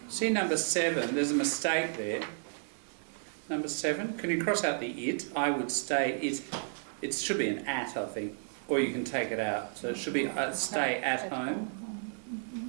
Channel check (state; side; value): silent; left; digital silence